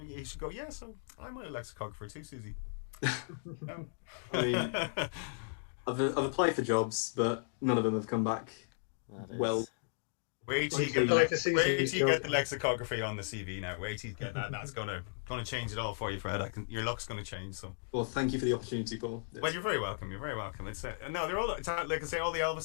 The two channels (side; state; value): right; silent; digital silence